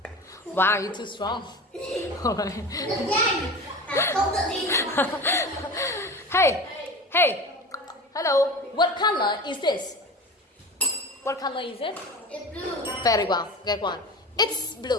Wow, you're too strong. Alright. Hey, hello. What color is this? What color is it? It's blue. Very well, good one. It's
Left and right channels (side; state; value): both; normal; correlation 0.33